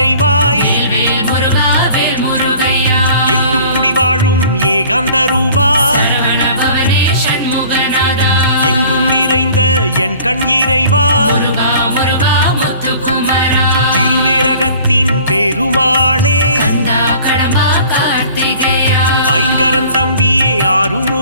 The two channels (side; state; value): both; inverted; correlation -0.48